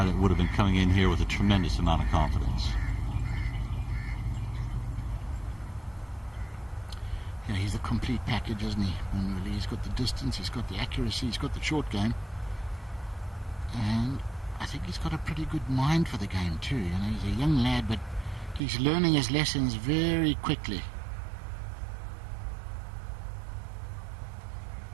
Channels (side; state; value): left; drops out; at 18.6 s